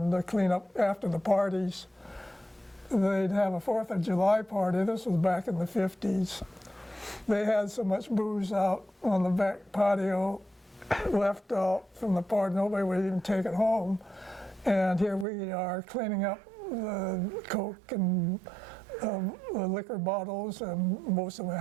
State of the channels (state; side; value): drops out; left; at 15.2 s